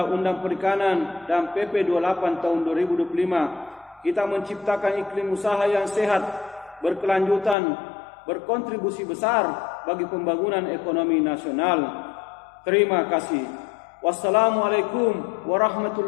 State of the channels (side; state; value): right; drops out; at 7.6 s